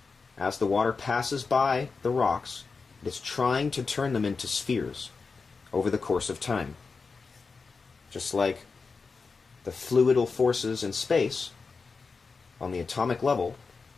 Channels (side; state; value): right; quieter; 4.6 dB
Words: As the water passes by the rocks, it is trying to turn them into spheres over the course of time. Just like the fluidal forces in space on the atomic level